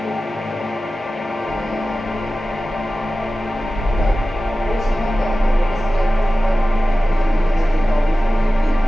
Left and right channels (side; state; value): both; normal; correlation 0.95